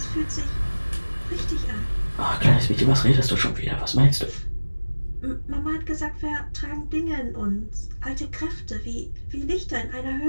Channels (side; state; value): both; inverted; correlation -1.00